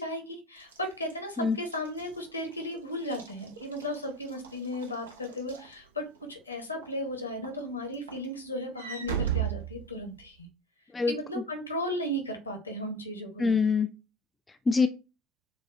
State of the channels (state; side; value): normal; both; correlation 0.32